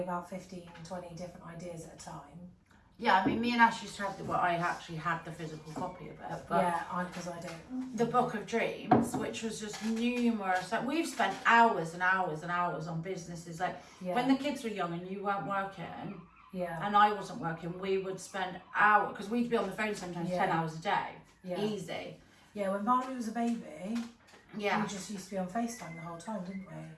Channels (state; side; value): identical; both; correlation 1.00